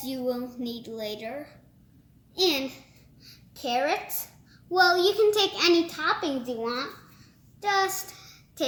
you will need later. And carrots. Well, you can take any toppings you want. Just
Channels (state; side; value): identical; both; correlation 1.00